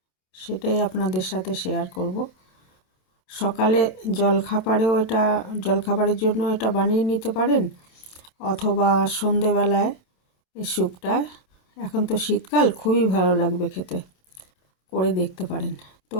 সেটাই আপনাদের সাথে শেয়ার করব। সকালে জলখাবারের জন্য এটা বানিয়ে নিতে পারেন, অথবা সন্ধেবেলায় এই স্যুপটা, এখন তো শীতকাল, খুবই ভালো লাগবে খেতে, করে দেখতে পারেন। তো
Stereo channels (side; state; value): right; late; 27 ms